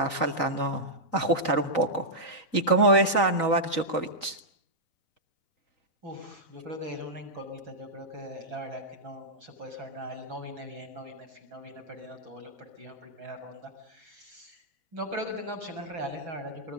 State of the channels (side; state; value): right; late; 3.9 ms